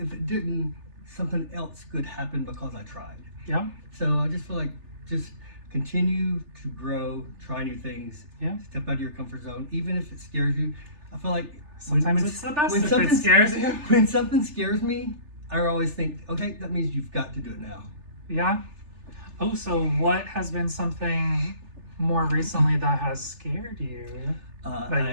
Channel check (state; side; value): late; left; 3.4 ms